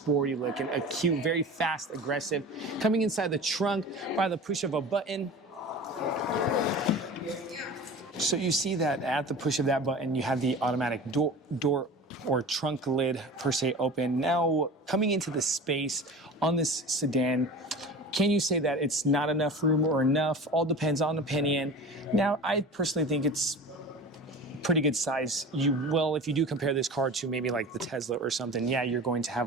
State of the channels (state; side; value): normal; both; correlation 0.35